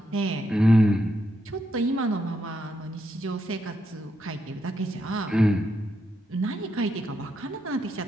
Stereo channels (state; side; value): normal; both; correlation 0.81